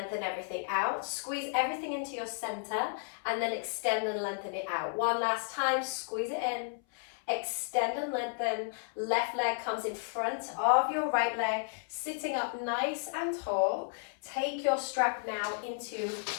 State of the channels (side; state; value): right; silent; 56 dB below the other